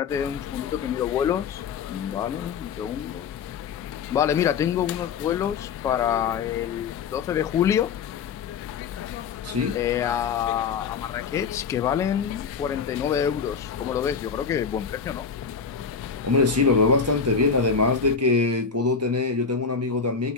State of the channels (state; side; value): quieter; right; 5.8 dB